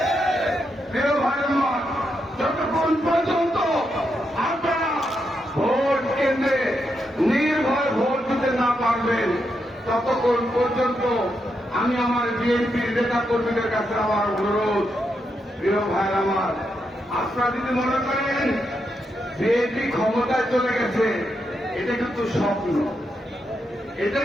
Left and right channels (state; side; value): normal; both; correlation 0.83